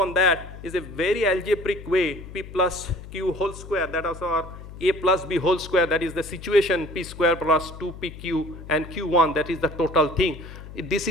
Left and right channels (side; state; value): left; noise; hum, 14 dB below the sound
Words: that is a very algebraic way, P plus Q whole square, that is our A plus B whole square, that is the situation, P square plus 2PQ and Q1, that is the total thing. This